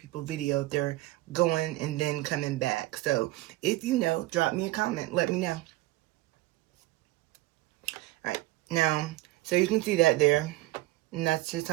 video if they're going and then coming back. So, if you know, drop me a comment. Let me know. Alright, now, so you can see that there. And that's just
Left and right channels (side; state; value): left; quieter; 18.3 dB